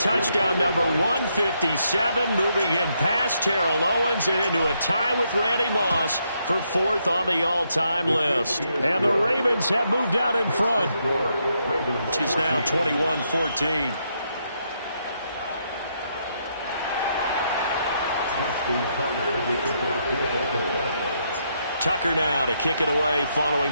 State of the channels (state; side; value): inverted; both; correlation -0.77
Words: number 157, moving him past Terrell Owens and into a tie with Randy Moss for 4th on the all-time list. And the Ravens have moved out in front. It is now 21-14. Tucker now to kick it away